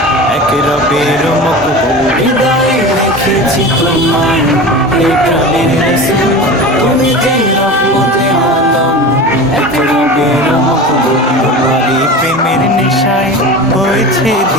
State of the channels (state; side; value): normal; both; correlation 0.31